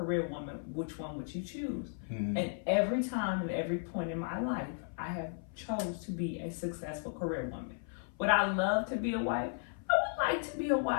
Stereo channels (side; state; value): right; silent; 54 dB below the other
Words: woman? Which one would you choose? Mhm. And every time and every point in my life, I have chose to be a successful career woman. Would I love to be a wife? I would like to be a